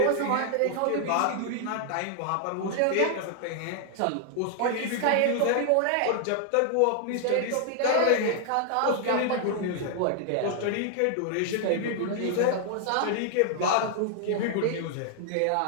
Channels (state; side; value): different; both; correlation 0.00